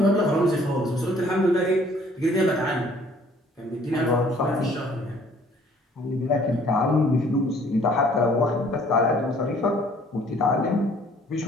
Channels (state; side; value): normal; both; correlation 0.58